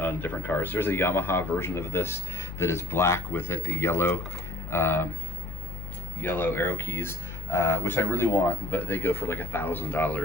different cars. There's a Yamaha version of this that is black with a yellow arrow keys, which I really want, but they go for like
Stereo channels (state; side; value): noise; left; hum, 8 dB below the sound